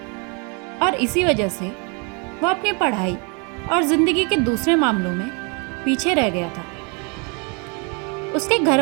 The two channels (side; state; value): left; quieter; 33.9 dB